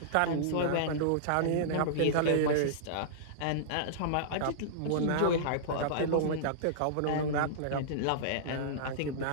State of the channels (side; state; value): both; different; correlation -0.03